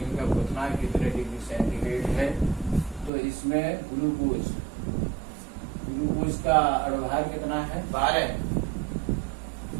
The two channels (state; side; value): drops out; left; at 3.1 s